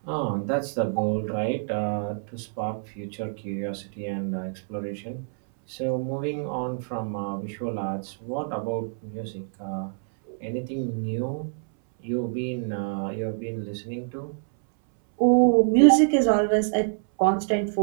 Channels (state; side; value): silent; left; 61 dB below the other